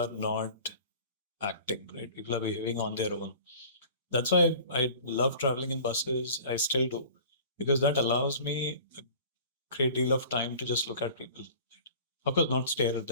not acting, right? People are behaving on their own. That's why I love traveling in buses. I still do, because that allows me a great deal of time to just look at people. Of course, not stare at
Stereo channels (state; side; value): inverted; both; correlation -0.44